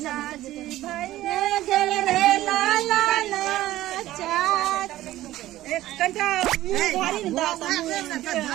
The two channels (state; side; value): quieter; left; 15.1 dB